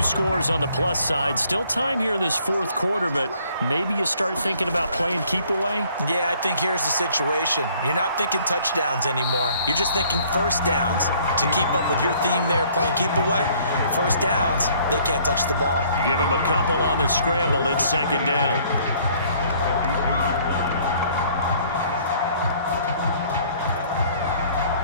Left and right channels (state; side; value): inverted; both; correlation -0.60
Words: scores on the plus side. Still time here in this 4th quarter, but maybe you start thinking about playing keep away? Yeah, I think here's the situation. You're not thinking touchdowns anymore. You're just thinking 1st downs. To keep up with your theme there, playing keep away, 1st downs, they can't touch the ball. Give him a couple on the scramble. It's 2nd down.